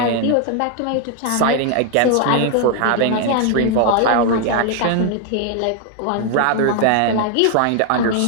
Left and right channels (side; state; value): both; different; correlation 0.00